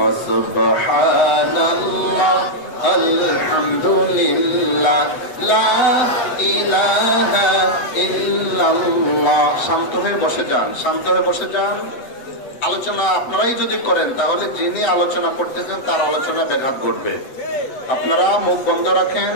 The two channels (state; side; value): late; right; 8.0 ms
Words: সুবহানাল্লাহ আলহামদুলিল্লাহ লা ইলাহা ইল্লাল্লাহ। শান্ত হয়ে বসে যান, শান্ত হয়ে বসে যান। আলোচনা আপনারাই যদি করেন তাহলে যিনি আলোচনা করতেছেন তার আলোচনা ব্যাঘাত ঘটবে। আপনারা মুখ বন্ধ রাখেন,